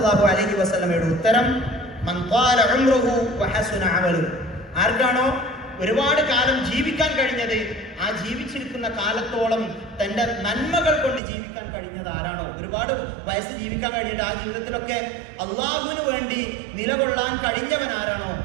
അലൈഹി വസല്ലമയുടെ ഉത്തരം, മൻ ത്വാല ഉംറുഹു വഹസുന അമലുഹു, ആർക്കാണോ ഒരുപാട് കാലം ജീവിക്കാൻ കഴിഞ്ഞത്, ആ ജീവിച്ചിരിക്കുന്ന കാലത്തോളം തൻ്റെ നന്മകൾ കൊണ്ട് ജീവിക്കാൻ കഴിഞ്ഞത് ആരാണോ, ഒരുപാട് വയസ്സ് ജീവിക്കാൻ കഴിഞ്ഞിട്ട് ആ ജീവിതത്തിലൊക്കെ അള്ളാഹുവിന് വേണ്ടി നിലകൊള്ളാൻ കഴിഞ്ഞവൻ ആരാണോ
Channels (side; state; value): left; drops out; at 11.2 s